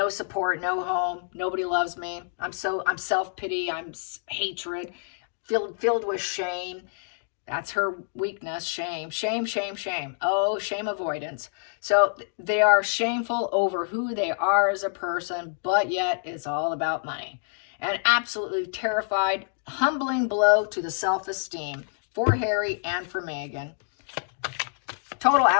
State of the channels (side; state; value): right; silent; digital silence